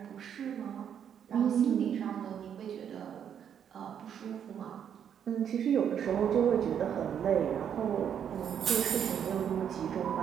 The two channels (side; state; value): left; quieter; 8.6 dB